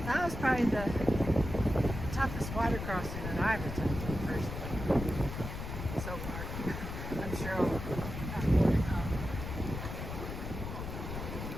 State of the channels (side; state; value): left; noise; rumble, 6 dB below the sound